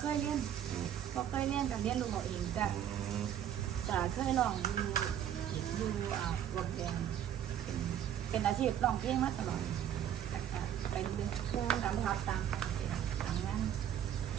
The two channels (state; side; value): quieter; left; 10.2 dB